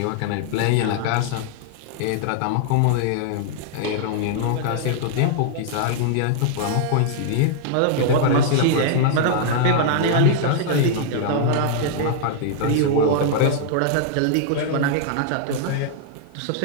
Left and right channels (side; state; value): both; different; correlation -0.01